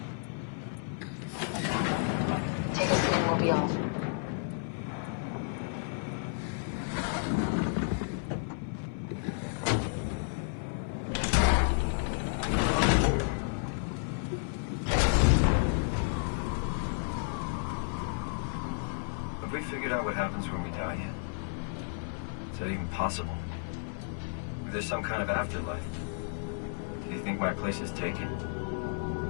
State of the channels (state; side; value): silent; right; 56 dB below the other